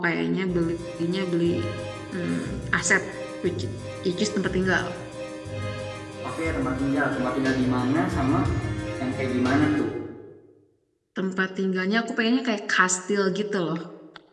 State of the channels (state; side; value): identical; both; correlation 1.00